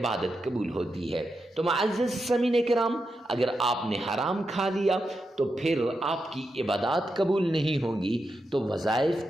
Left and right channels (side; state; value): both; normal; correlation 0.87